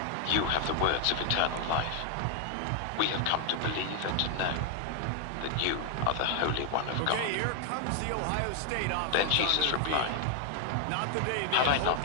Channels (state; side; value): different; both; correlation 0.00